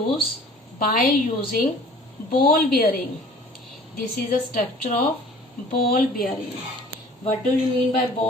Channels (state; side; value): normal; both; correlation 0.48